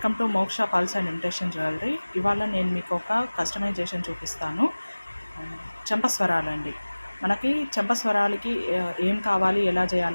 టు మోక్ష పల్స్ అండ్ ఇమిటేషన్ జ్యువెలరీ. ఇవాళ నేను మీకు ఒక కస్టమైజేషన్ చూపిస్తాను. చెంపస్వరాలండి. మనకి చెంపస్వరాలకి ఏం కావాలి, ఎలా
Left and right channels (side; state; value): both; inverted; correlation -1.00